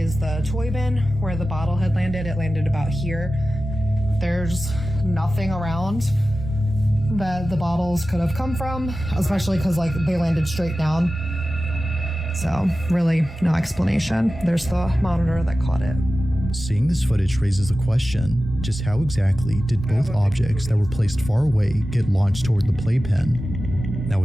the toy bin where the bottle had landed. It landed about here. There's nothing around that the bottles could have come from, especially because like they landed straight down. So really no explanation. There's the monitor that caught it. Seeing this footage raises the question, just how exactly did both objects that were placed far away get launched toward the playpen? Now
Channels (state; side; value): normal; both; correlation 0.94